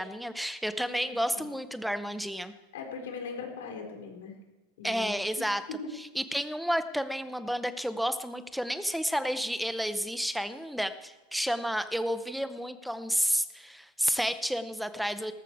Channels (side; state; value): both; normal; correlation 0.93